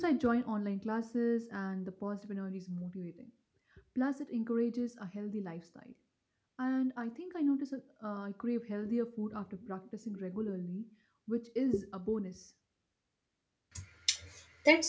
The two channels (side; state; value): both; identical; correlation 1.00